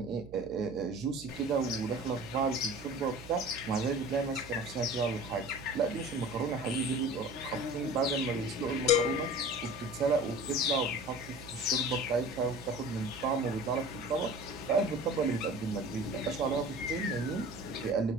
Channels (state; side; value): noise; right; hum, 16 dB below the sound